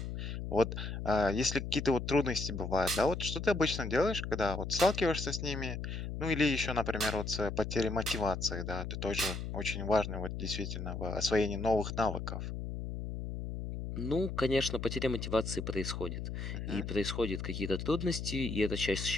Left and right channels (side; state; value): left; noise; hum, 5 dB below the sound